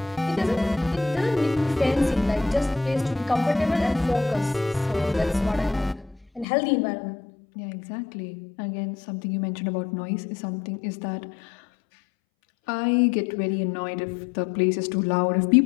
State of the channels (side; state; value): right; drops out; at 6.5 s